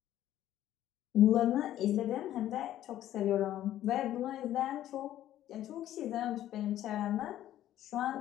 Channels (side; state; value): right; quieter; 12.7 dB